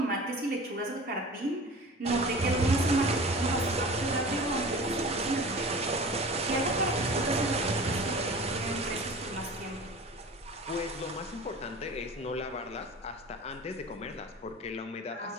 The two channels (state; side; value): normal; both; correlation 0.38